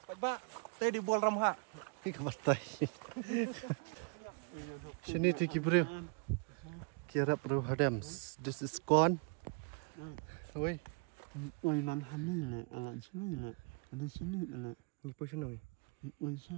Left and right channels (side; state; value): left; quieter; 35.2 dB